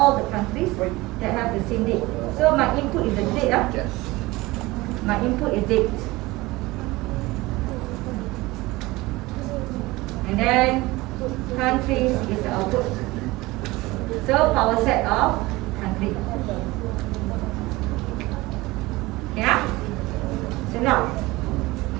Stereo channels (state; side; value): quieter; left; 20.7 dB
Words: the countries that have the same date. So my input is the date. Yes. My input is date. And then countries is the output. So power set of country. Yeah? So now,